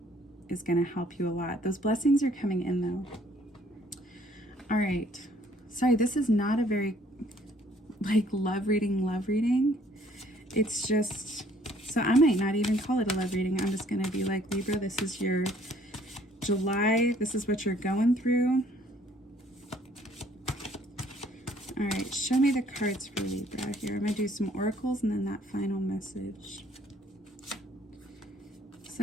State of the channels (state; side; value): normal; both; correlation 0.61